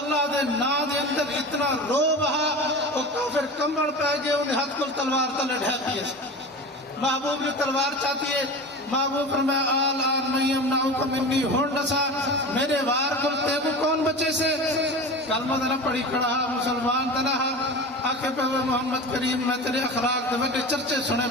دے نا دے اندر اتنا رو بہا اور کافر کمبڑ پہ گئے انہیں ہاتھ کل تلوار تلے ڈھاتی ہے محبوب نے تلوار چاہتی ہے محبوب فرمایا آل آن میں یمنعک منی ہونڈسا میرے وار کل تے کو کون بچے سے کلمہ دنا پڑی کھڑا مسلمان دنا آکے پہ ہوئے محمد کریم میں تیرے اخلاق دے بڑے چرچے سنے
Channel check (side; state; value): both; normal; correlation 0.31